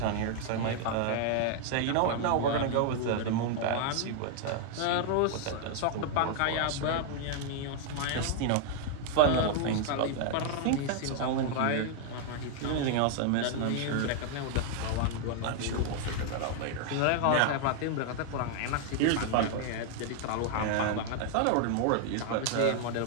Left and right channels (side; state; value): both; different; correlation 0.00